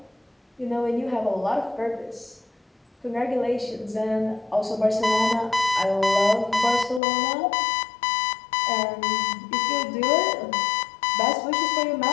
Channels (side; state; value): right; drops out; at 7.0 s